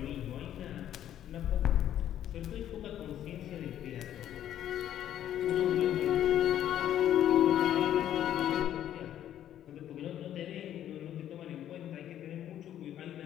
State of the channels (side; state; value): right; quieter; 11.2 dB